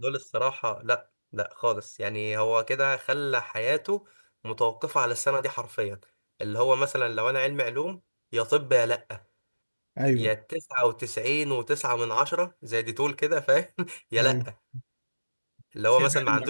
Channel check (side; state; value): both; inverted; correlation -1.00